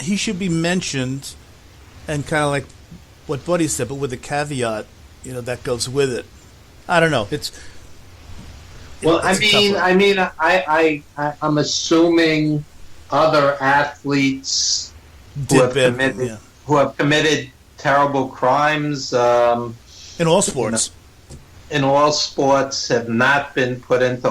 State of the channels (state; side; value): identical; both; correlation 1.00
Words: should be mentioned, and kind of like what Buddy said, but with a caveat, that goes with it. I don't know. I'm assuming other athletes who have committed terrible crimes in all sports. In all sports, have not been put into